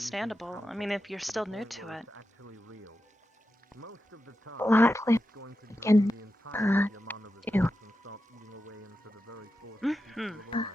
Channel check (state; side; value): normal; both; correlation 0.90